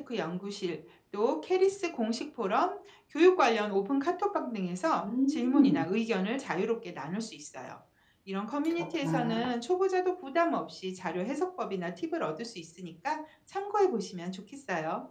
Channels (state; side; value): identical; both; correlation 1.00